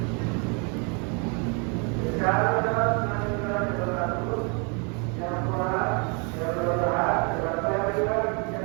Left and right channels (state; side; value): quieter; left; 34.7 dB